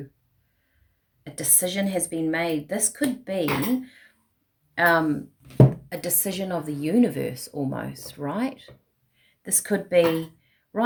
A decision has been made. This could be a decision of the universe almost, right? This could be,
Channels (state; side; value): identical; both; correlation 1.00